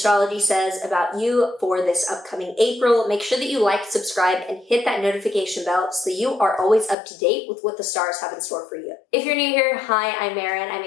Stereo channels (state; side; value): drops out; right; at 7.0 s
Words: says about you for this upcoming April, make sure that you like, subscribe, and hit that notification bell so that you are always up to date with what the stars have in store for you. If you're new here, hi, I'm Maren. I